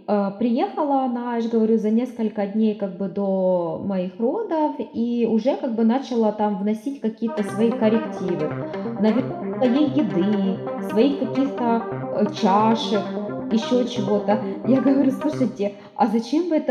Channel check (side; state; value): both; identical; correlation 1.00